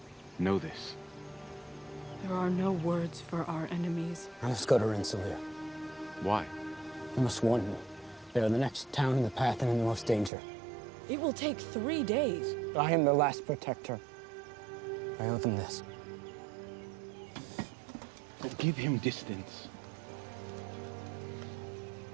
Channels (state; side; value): drops out; left; at 10.3 s